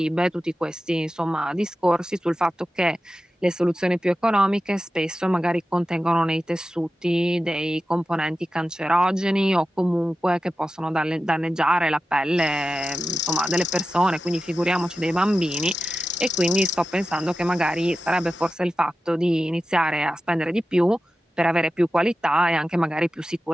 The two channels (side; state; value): both; normal; correlation 0.93